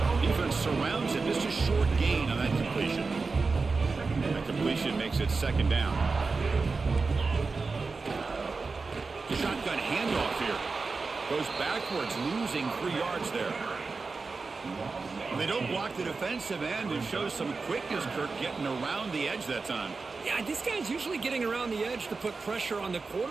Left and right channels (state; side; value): quieter; left; 4.2 dB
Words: Defense surrounds him. Just a short gain on that completion. That completion makes it 2nd down. Shotgun handoff here. Goes backwards, losing 3 yards there. When they don't block the defensive end, it shows some quickness, Kirk, getting around the edge that time. Yeah, this guy's usually getting around the edge to put pressure on the